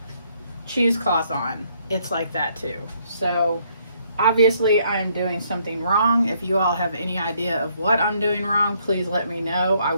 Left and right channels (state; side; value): inverted; both; correlation -0.69